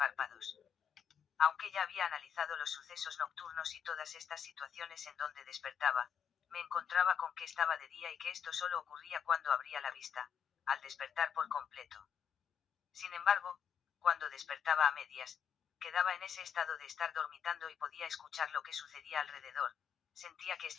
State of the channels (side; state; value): right; quieter; 7.8 dB